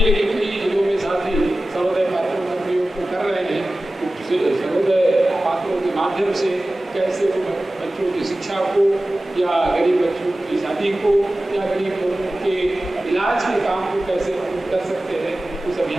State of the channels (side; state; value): both; normal; correlation 0.96